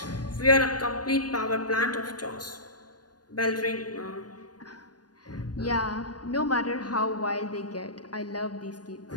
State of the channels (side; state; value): right; late; 0.69 ms